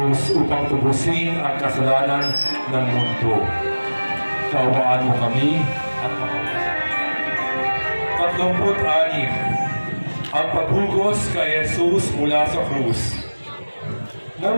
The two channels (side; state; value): both; inverted; correlation -1.00